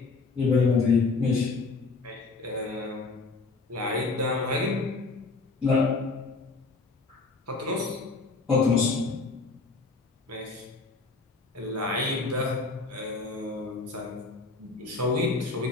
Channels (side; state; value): right; quieter; 3.9 dB